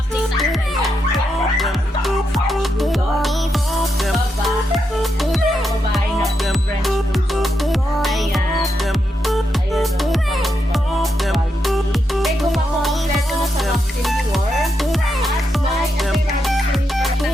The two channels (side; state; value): both; normal; correlation 0.83